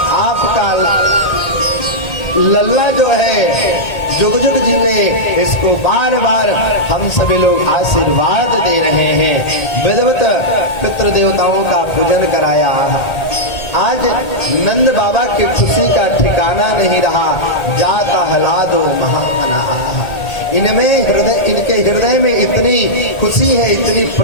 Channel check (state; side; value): late; right; 1.8 ms